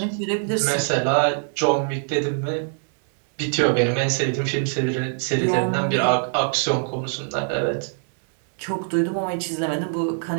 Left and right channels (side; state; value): left; silent; digital silence